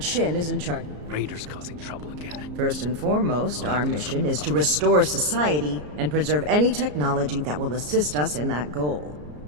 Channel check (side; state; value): left; late; 34 ms